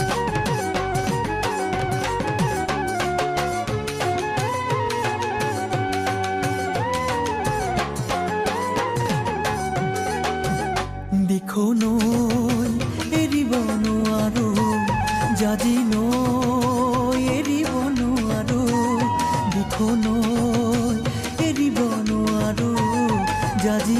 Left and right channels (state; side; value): identical; both; correlation 1.00